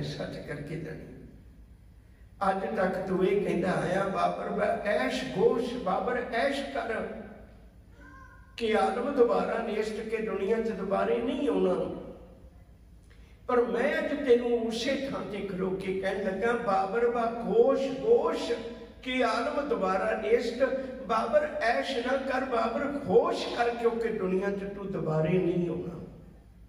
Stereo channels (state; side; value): identical; both; correlation 1.00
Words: सच करके जानी। अज तक तू ये कहता आया बाबर ऐश गोश बाबर ऐश कर के आलम दोबारा नेस्त के दुनिया च दोबारे नहीं होना। पर मैं अज तेनू उसे थां ते खलो के कह लगा बाबर बा गोश गोश के आलम दोबारा नेस्त बाबर ऐश ना कर बाबर होश कर क्योंकि दुनिया च तू दोबारे नहीं होना।